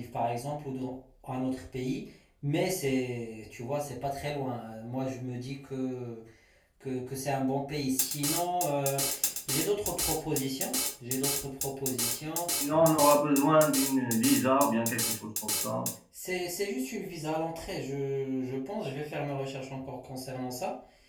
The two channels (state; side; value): identical; both; correlation 1.00